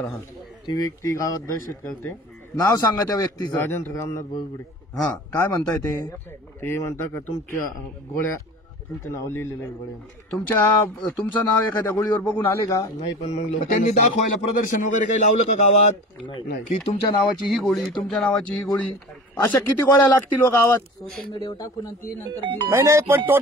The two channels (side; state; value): both; normal; correlation 0.37